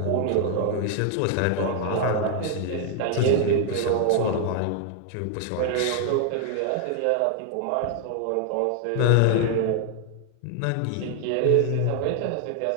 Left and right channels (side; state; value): both; different; correlation 0.00